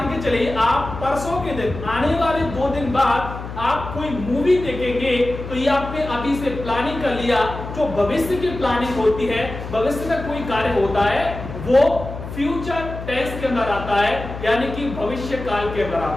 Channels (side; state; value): left; noise; hum, 9 dB below the sound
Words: के चलिए आप परसों के दिन, आने वाले 2 दिन बाद आप कोई मूवी देखेंगे, तो ये आपने अभी से प्लानिंग कर लिया। जो भविष्य की प्लानिंग होती है, भविष्य में कोई कार्य होता है, वो फ्यूचर टेंस के अंदर आता है, यानी कि भविष्य काल के अंदर